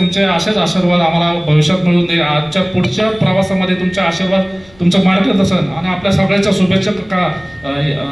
असेच आशीर्वाद आम्हाला भविष्यात मिळून दे. आजच्या पुढच्या प्रवासामध्ये तुमचे आशीर्वाद, तुमचं मार्गदर्शन आणि आपल्या सगळ्यांच्या शुभेच्छा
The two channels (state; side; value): noise; left; rumble, 27 dB below the sound